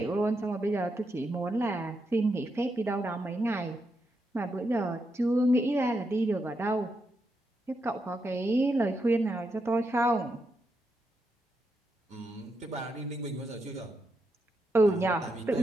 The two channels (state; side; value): normal; both; correlation 0.83